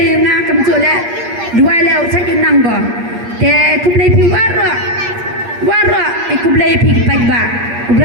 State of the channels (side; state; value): left; late; 8.6 ms